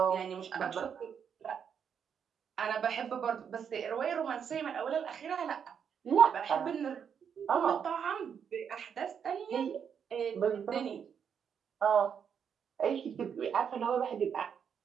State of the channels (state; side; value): quieter; left; 7.5 dB